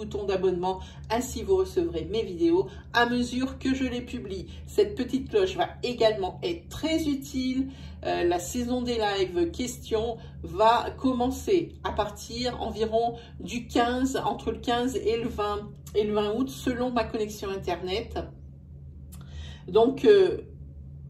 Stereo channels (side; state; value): both; identical; correlation 1.00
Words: d'abonnement. Ainsi, vous recevrez mes vidéos à mesure que je les publie. Cette petite cloche va également être très utile. La saison des lives questions va commencer à partir environ du 15, entre le 15 et le 20 août, selon ma connexion Internet. Donc,